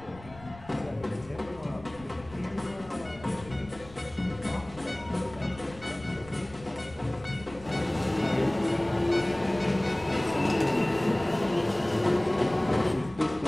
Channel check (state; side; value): noise; left; rumble, 20 dB below the sound